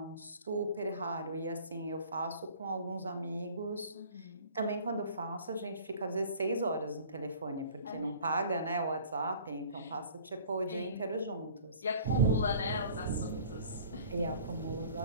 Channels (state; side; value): inverted; both; correlation -0.49